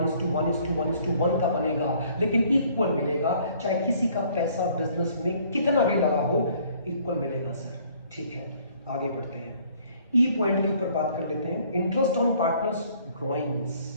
का बनेगा, लेकिन इक्वल मिलेगा। चाहे किसी का पैसा बिजनेस में कितना भी लगा हो, इक्वल मिलेगा सर। ठीक है, आगे बढ़ते हैं, ई पॉइंट के ऊपर बात कर लेते हैं, इंटरेस्ट ऑन पार्टनर्स ड्रॉइंग्स।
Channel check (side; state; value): both; inverted; correlation -0.59